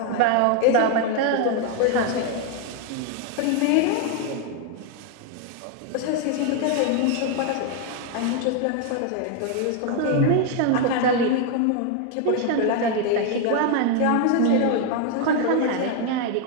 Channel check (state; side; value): different; both; correlation 0.01